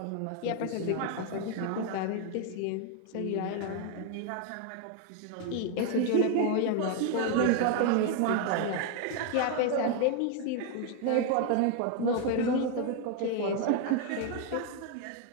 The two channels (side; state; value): both; different; correlation 0.01